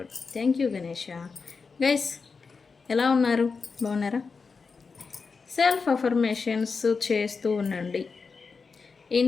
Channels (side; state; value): right; quieter; 4.9 dB